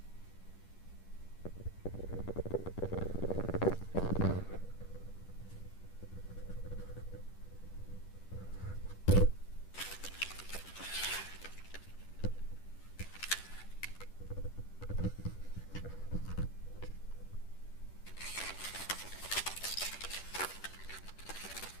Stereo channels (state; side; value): late; right; 10 ms